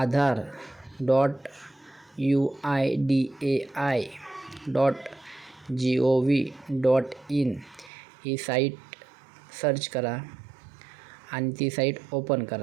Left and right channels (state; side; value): drops out; left; at 7.9 s